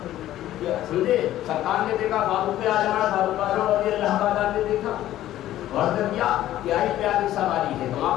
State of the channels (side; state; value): right; quieter; 13.5 dB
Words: سمجھے، سرکار نے دیکھا فاروق اعظم رضی اللہ تعالیٰ نے دیکھا اور کیا کیا ہی پیاری سواری ہے۔ تو